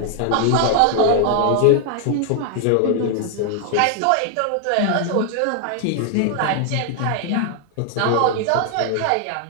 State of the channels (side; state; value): both; different; correlation 0.00